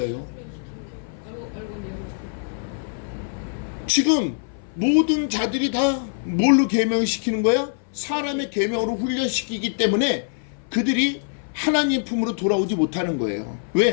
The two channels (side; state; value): right; silent; 58 dB below the other